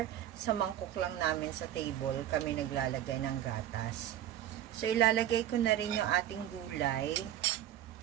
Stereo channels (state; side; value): quieter; left; 12.0 dB